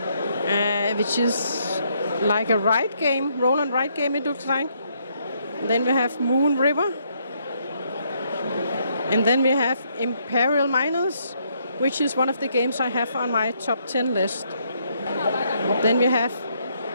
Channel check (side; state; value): both; inverted; correlation -0.73